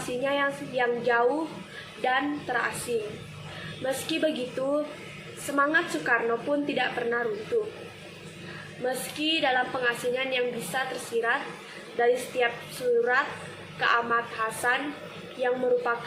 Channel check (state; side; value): identical; both; correlation 1.00